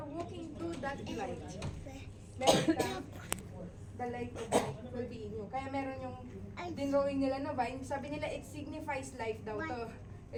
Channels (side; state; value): both; identical; correlation 1.00